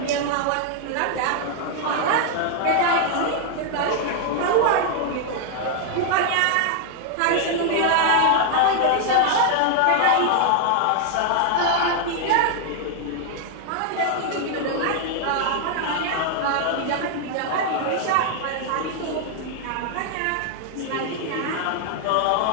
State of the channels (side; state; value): both; different; correlation 0.00